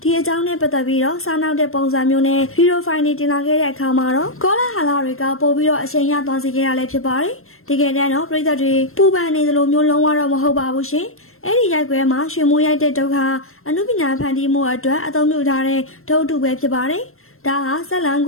ဒီအကြောင်းနဲ့ပတ်သက်ပြီးတော့စားနောက်တဲ့ပုံစံမျိုးနဲ့ဗီဒီယိုဖိုင်တွေတင်လာခဲ့တဲ့အခါမှာတော့ကောလာဟာလာတွေကပို့ပြီးတော့အချိန်ရသွားစေခဲ့ရလဲဖြစ်ပါတယ်။ဒီကနေ့တော့ပြည်သက်တွေပူပန်နေသလိုမျိုးလုံးဝတော့မဟုတ်ပါဘူးရှင်။အဲ့ဒီရိုက်ကွဲမှာရွှေမိုးရိုက်တဲ့ဒုက္ခအနုပညာဖန်တီးမှုအတွက်အသုံးပြုထားတဲ့ဒုတ်တုပဲဖြစ်ပါတယ်။ဒါဟာဇက်လန်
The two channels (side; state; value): right; late; 0.62 ms